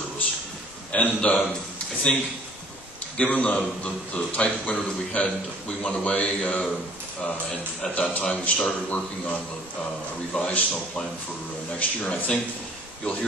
And I think given the type of winter that we had, we went away and at that time we started working on a revised snow plan for next year. And I think you'll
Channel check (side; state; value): both; normal; correlation 0.54